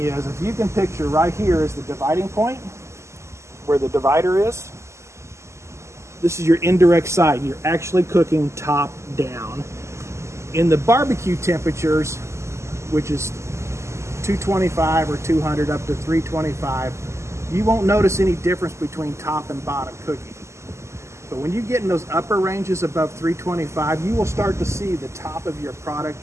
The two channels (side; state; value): left; late; 0.13 ms